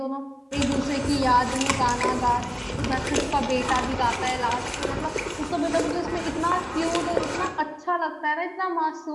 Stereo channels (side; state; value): both; identical; correlation 1.00